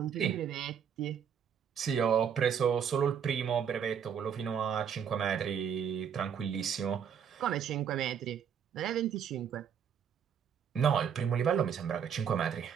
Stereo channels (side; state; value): left; quieter; 7.9 dB